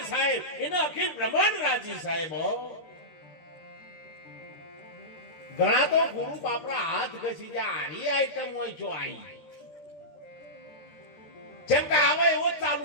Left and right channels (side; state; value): right; late; 12 ms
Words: સાહેબ એનો અખિલ બ્રહ્માંડ રાજી સાહેબ. ઘણા તો ગુરુ બાપરા હાથ ઘસી જાય. આરી આઈટમ હોય જો આઈ જેમ કે આવે એવો જ